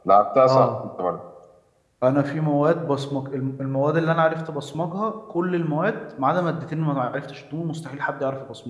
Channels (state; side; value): identical; both; correlation 1.00